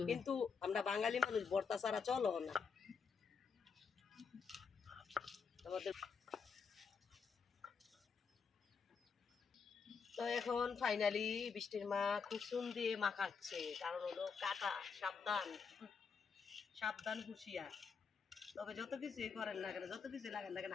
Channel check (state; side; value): quieter; right; 5.7 dB